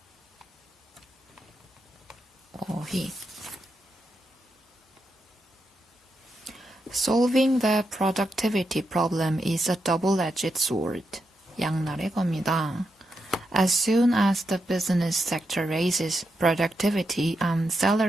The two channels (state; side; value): normal; both; correlation 0.85